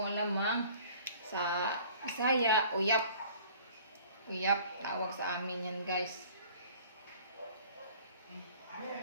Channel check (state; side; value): inverted; both; correlation -0.50